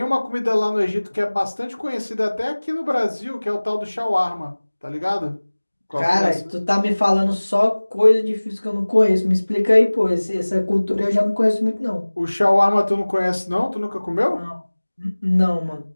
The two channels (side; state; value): both; inverted; correlation -1.00